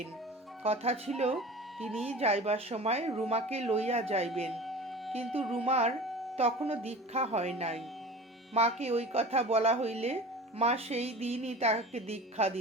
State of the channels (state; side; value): normal; both; correlation 0.37